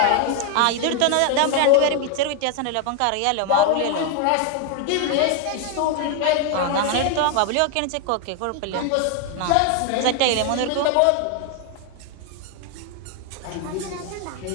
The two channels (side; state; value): both; different; correlation 0.01